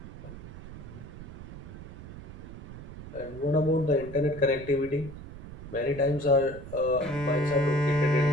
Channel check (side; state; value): right; noise; rumble, 12 dB below the sound